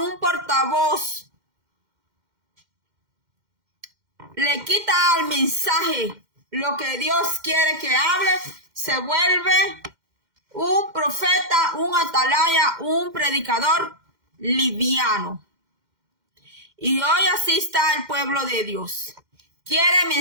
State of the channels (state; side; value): late; left; 2.1 ms